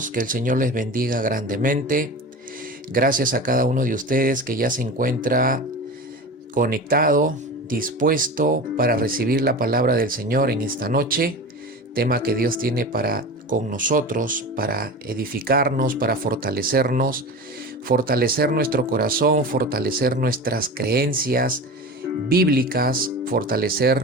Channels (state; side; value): normal; both; correlation 0.31